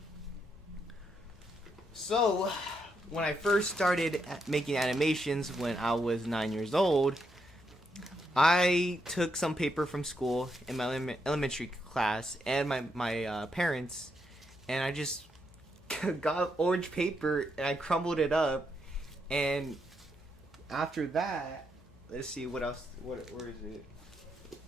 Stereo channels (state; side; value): normal; both; correlation 0.80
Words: So, when I first started making animations when I was 9 years old, I took some paper from school in my elementary class and my parents, and I just got orange paper and I crumbled it up, and after that, let's see what else. Where is it?